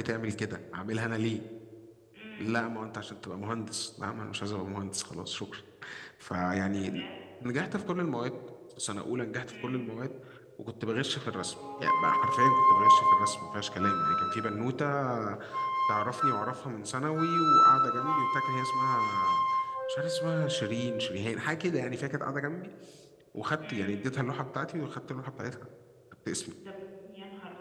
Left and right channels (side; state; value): both; identical; correlation 1.00